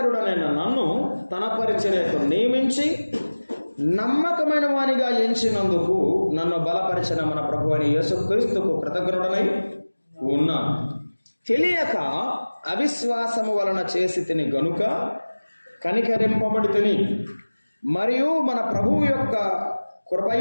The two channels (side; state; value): both; inverted; correlation -1.00